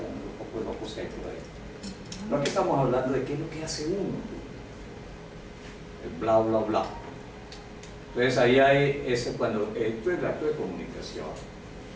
un poco de locos que hay por ahí. No, aquí estamos hablando de qué es lo que hace uno, el bla bla bla. Entonces ahí hay ese, cuando esto es el acto de comunicación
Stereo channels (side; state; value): both; identical; correlation 1.00